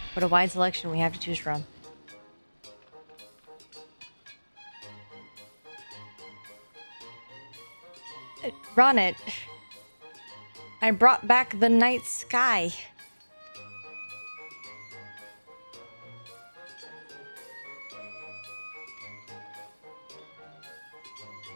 What a wide selection we have to choose from. Ronit, I brought back the night sky.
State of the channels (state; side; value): inverted; both; correlation -1.00